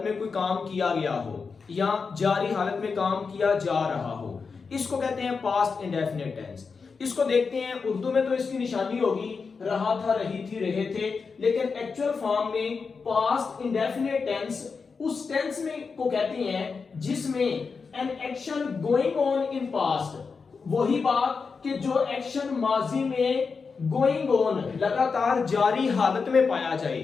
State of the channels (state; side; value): quieter; right; 5.1 dB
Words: में कोई काम किया गया हो या जारी हालत में काम किया जा रहा हो, इसको कहते हैं पास्ट इंडेफिनिट टेंस। इसको देखते हैं उर्दू में तो इसकी निशानी होगी रहा था, रही थी, रहे थे, लेकिन एक्चुअल फॉर्म में पास्ट इंडेफिनिट टेंस उस टेंस में को कहते हैं जिसमें an action going on in past, वही बात कि जो एक्शन माजी में गोइंग ऑन लगातार जारी हालत में पाया जाए